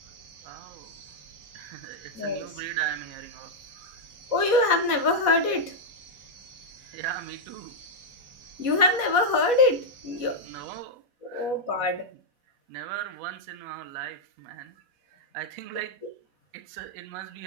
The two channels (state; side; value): late; left; 4.1 ms